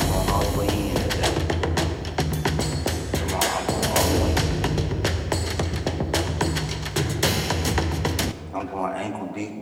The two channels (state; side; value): identical; both; correlation 1.00